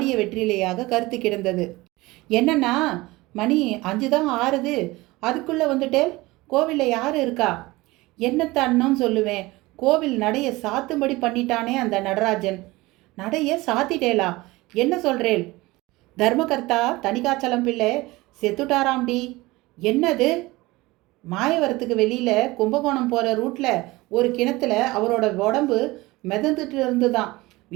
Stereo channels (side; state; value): left; quieter; 20.8 dB